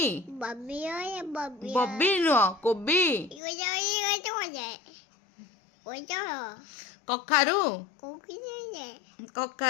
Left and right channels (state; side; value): drops out; right; at 3.4 s